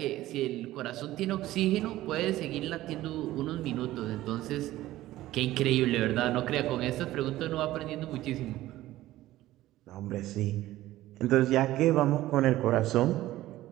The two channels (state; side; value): quieter; left; 15.6 dB